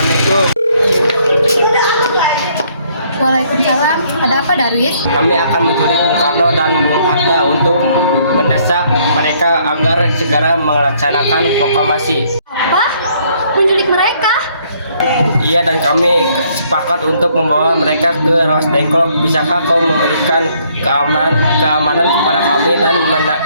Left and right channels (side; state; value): both; inverted; correlation -0.66